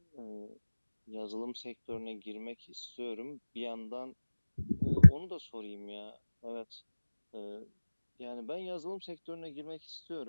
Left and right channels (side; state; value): both; inverted; correlation -1.00